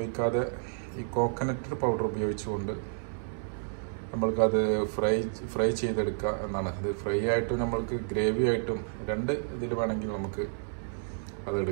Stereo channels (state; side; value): silent; left; 57 dB below the other